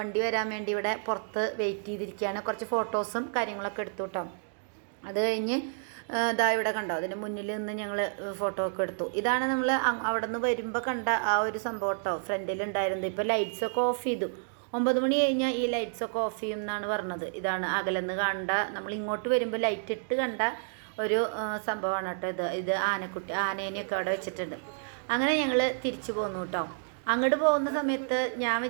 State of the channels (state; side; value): silent; left; digital silence